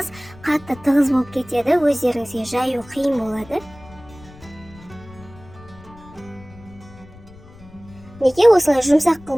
қатты тығыз болып кетеді, өздеріңізге жаю қиын болады. Неге осылай жұмсақ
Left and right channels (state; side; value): noise; left; rumble, 21 dB below the sound